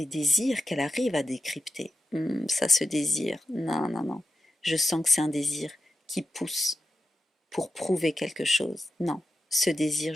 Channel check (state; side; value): normal; both; correlation 0.90